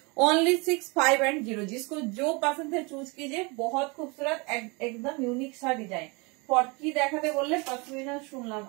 ओनली 6510, जिसको जो पसंद है चूज कीजिए। बहुत खूबसूरत एकदम यूनिक सा डिजाइन। কি দেখাতে বললে? পশমিনা শুনলাম,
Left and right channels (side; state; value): left; quieter; 28.6 dB